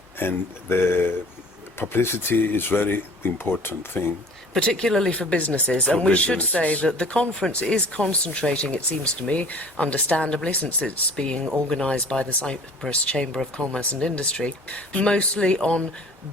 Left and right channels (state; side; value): normal; both; correlation 0.47